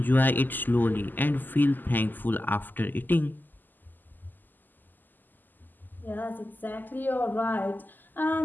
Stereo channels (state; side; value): late; right; 0.088 ms